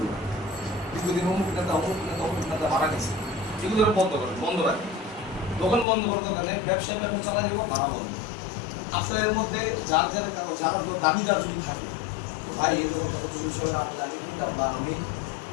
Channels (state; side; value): drops out; right; at 5.9 s